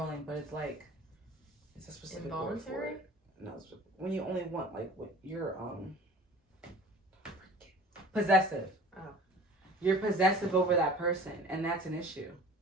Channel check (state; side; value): normal; both; correlation 0.43